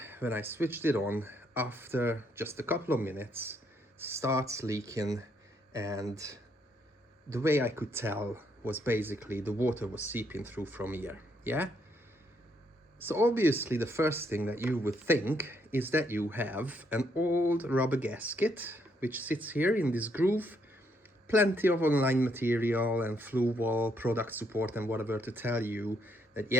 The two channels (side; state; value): both; normal; correlation 0.73